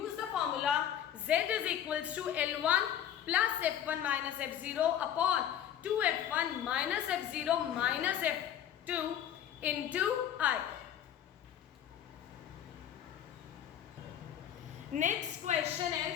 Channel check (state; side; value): quieter; right; 10.2 dB